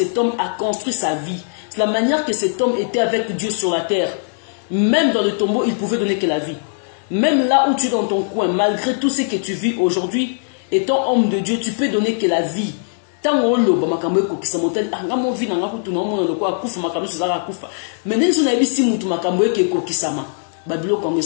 homme a construit sa vie. C'est la manière que cet homme était avec Dieu sur la terre. Même dans le tombeau, il pouvait donner que la vie. Même là où tu es dans ton coin, malgré tout ce que tu vis aujourd'hui, étant homme de Dieu, tu peux donner que la vie. Tant on loba makambo ko kisamotel anga mo vina nga kutu na mo ko akufa makambo suzaka akufa. Mais ndenzo na bisi mutu makambo ke ko kisama. Babilo ko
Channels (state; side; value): silent; right; digital silence